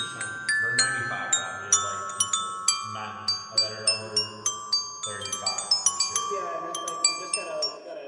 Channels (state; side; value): identical; both; correlation 1.00